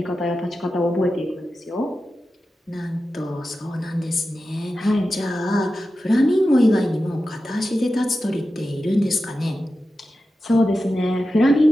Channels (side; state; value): both; normal; correlation 0.92